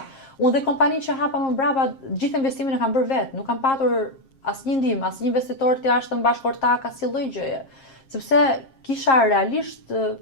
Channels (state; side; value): late; right; 7.5 ms